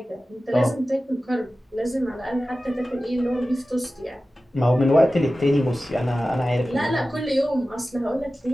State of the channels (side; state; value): both; normal; correlation 0.95